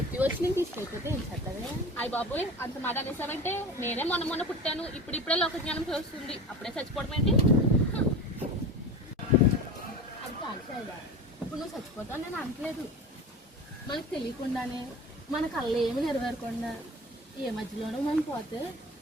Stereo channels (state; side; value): normal; both; correlation 0.32